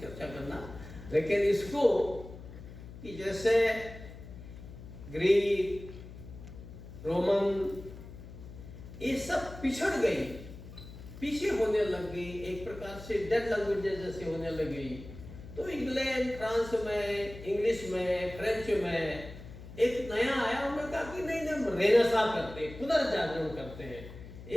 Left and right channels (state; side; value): noise; left; hum, 14 dB below the sound